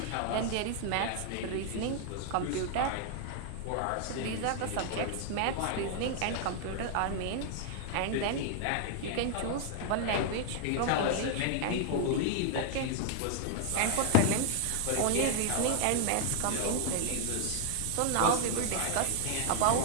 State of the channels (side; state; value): both; different; correlation 0.00